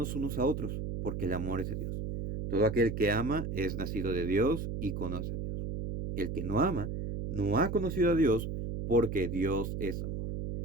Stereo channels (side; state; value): right; noise; hum, 4 dB below the sound